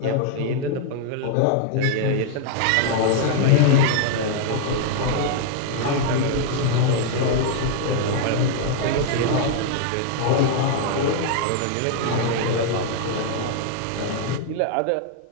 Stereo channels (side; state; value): both; different; correlation 0.00